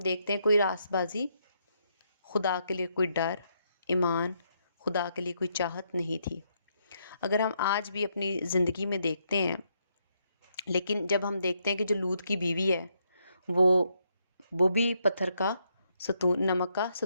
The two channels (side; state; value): both; inverted; correlation -0.77